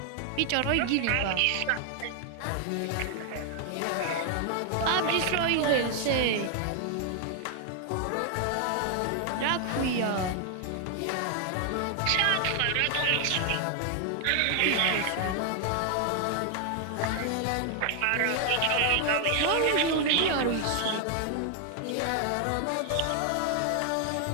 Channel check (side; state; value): both; different; correlation 0.00